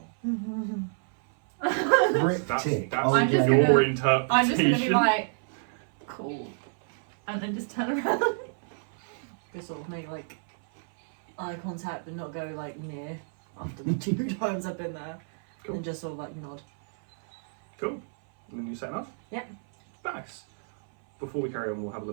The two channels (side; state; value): left; silent; 59 dB below the other